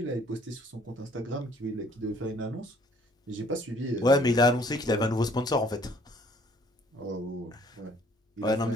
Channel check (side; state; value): both; normal; correlation 0.59